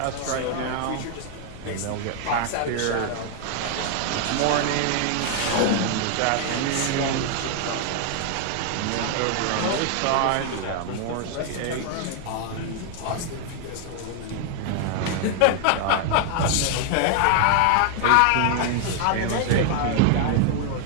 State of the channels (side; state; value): both; different; correlation 0.00